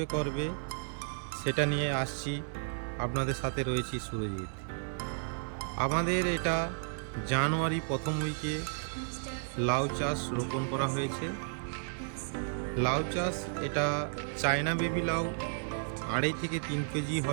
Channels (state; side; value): silent; left; digital silence